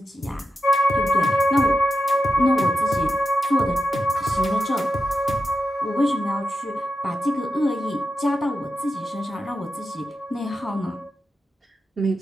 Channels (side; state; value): both; normal; correlation 0.89